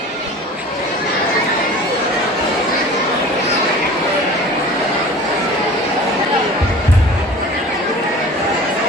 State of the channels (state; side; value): normal; both; correlation 0.41